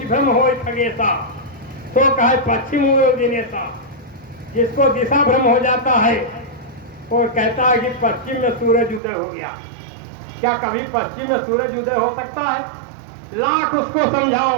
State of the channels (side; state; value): left; drops out; at 9.0 s